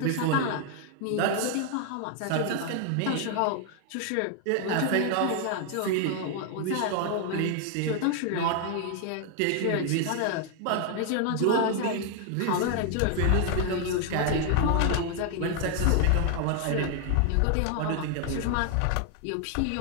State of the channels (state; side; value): different; both; correlation 0.00